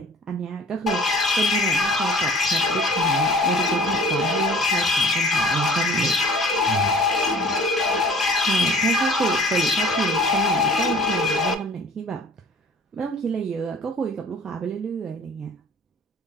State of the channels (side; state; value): both; normal; correlation 0.48